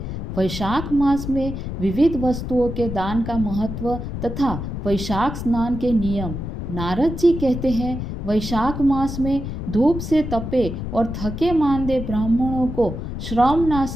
वैशाख मास में विविध वस्तुओं के दान का महत्व तथा वैशाख स्नान के नियम। नारद जी कहते हैं, वैशाख मास में धूप से तपे और थके मांदे ब्राह्मणों को श्रम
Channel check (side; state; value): left; noise; rumble, 6 dB below the sound